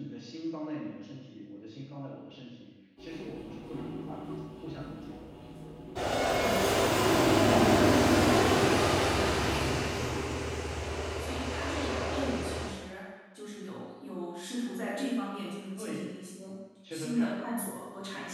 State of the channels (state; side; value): identical; both; correlation 1.00